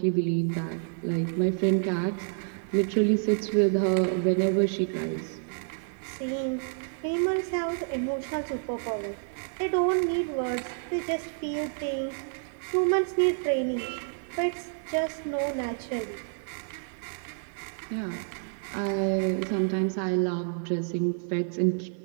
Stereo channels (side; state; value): left; silent; 59 dB below the other